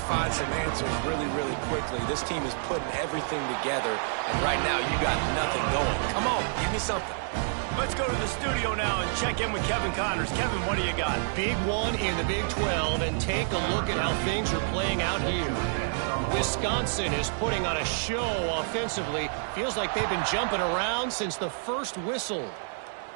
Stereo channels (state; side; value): silent; left; 59 dB below the other